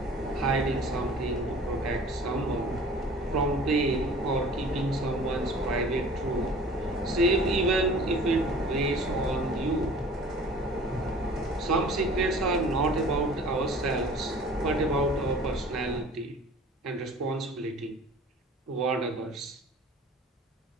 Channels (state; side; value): normal; both; correlation 0.45